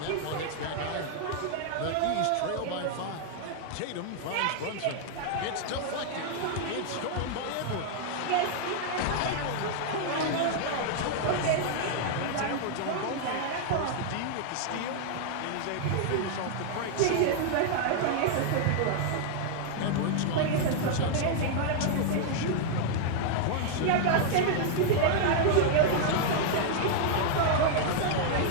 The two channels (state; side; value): different; both; correlation 0.00